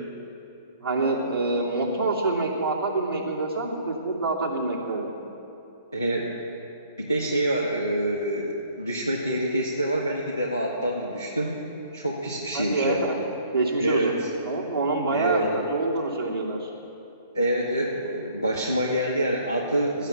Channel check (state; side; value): inverted; both; correlation -0.58